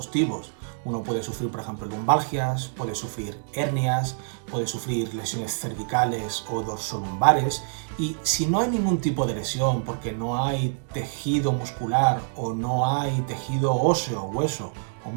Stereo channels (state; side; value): silent; left; digital silence